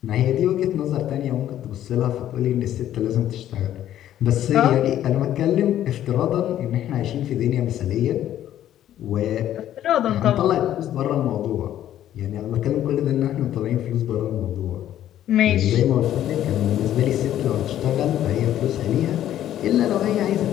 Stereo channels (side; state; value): right; quieter; 11.8 dB